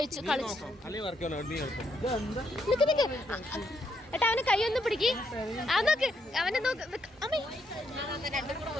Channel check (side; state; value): both; normal; correlation 0.76